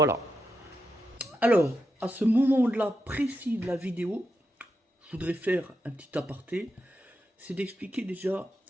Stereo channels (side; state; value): both; normal; correlation 0.86